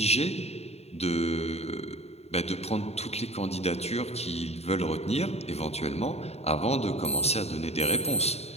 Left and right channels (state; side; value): late; right; 0.30 ms